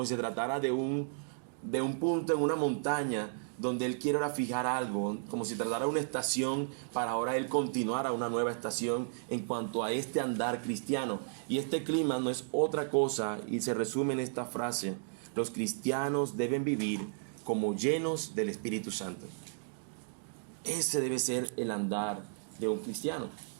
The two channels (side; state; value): left; silent; digital silence